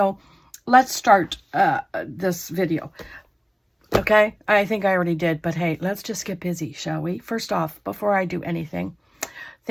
let's start this video. Okay, I think I already did, but hey, let's just get busy, shall we? First off, before I do anything,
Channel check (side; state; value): both; identical; correlation 1.00